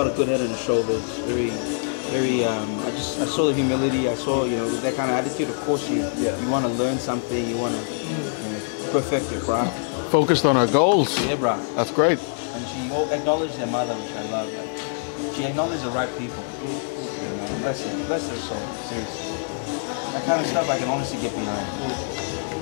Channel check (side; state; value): right; silent; digital silence